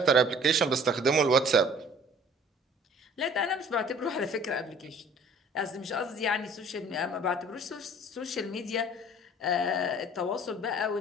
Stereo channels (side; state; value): both; normal; correlation 0.51